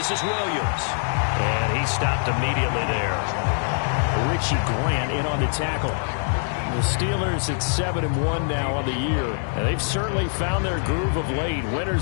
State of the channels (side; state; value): right; silent; digital silence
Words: is Williams. And he stopped immediately there. Richie Grant in on the tackle. The Steelers at 7-1 now on the year. And they've certainly found their groove of late.